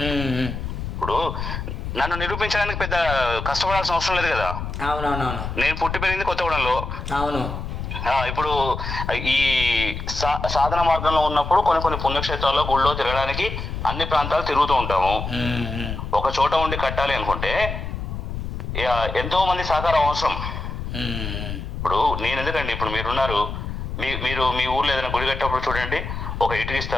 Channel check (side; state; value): left; noise; rumble, 5 dB below the sound